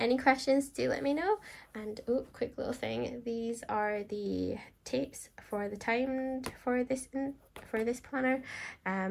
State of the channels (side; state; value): both; identical; correlation 1.00